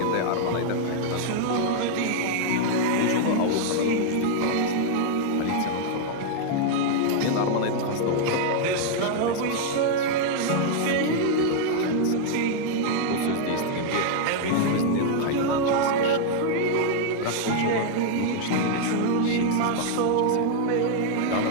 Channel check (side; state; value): both; different; correlation 0.00